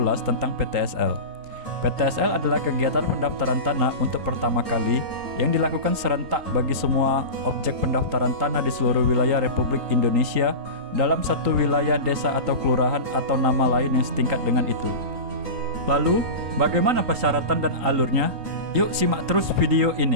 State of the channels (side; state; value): left; late; 3.8 ms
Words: tentang PTSL. PTSL adalah kegiatan pendaftaran tanah untuk pertama kali yang dilakukan serentak bagi semua objek pendaftaran tanah di seluruh wilayah Republik Indonesia dalam satu wilayah desa atau kelurahan atau nama lain yang setingkat dengan itu. Lalu, bagaimana persyaratan dan alurnya? Yuk simak terus video